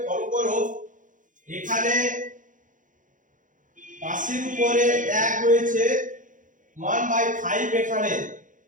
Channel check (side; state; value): left; late; 0.38 ms